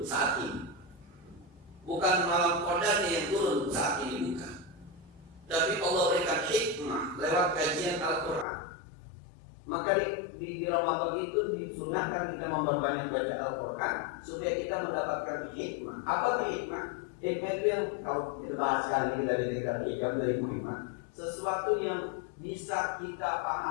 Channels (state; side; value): drops out; right; at 8.5 s